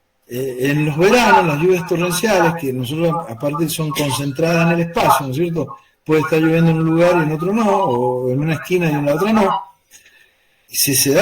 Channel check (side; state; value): both; identical; correlation 1.00